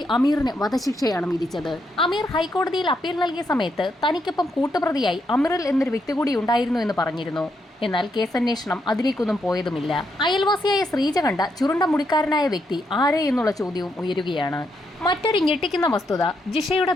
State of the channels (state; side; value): normal; both; correlation 0.79